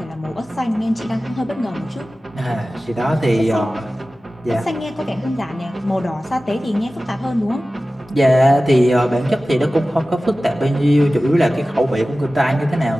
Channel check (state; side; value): normal; both; correlation 0.96